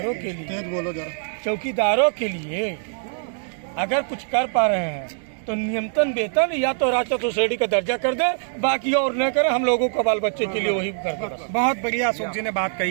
के लिए, तेज बोलो जरा, चौकीदारों के लिए अगर कुछ कर पा रहे हैं तो न्यूनतम वेतन या तो राजस्व सोसाइटी का दर्जा कर दे, बाकी और न करें, हम लोगों को बाल बच्चे के लिए वही कर दे। बहुत बढ़िया अशोक जी ने बात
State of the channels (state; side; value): silent; left; digital silence